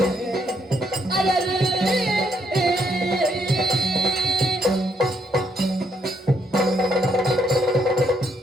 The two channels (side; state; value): both; normal; correlation 0.73